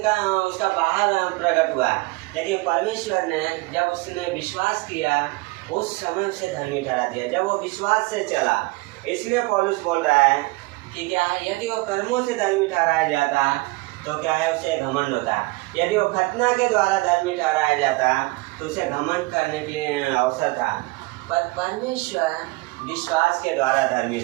का उसका बाहर प्रकट हुआ, लेकिन परमेश्वर ने जब उसने विश्वास किया उस समय उसे धर्मी ठहरा दिया, जब वो विश्वास से चला। इसलिए पौलुस बोल रहा है कि क्या है, यदि वो कर्मों से धर्मी ठहराया जाता तो क्या है, उसे घमंड होता। यदि वो खतना के द्वारा धर्मी ठहराया जाता तो उसे घमंड करने के लिए अवसर था, पर परमेश्वर विश्वास के द्वारा धर्मी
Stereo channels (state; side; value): quieter; left; 23.7 dB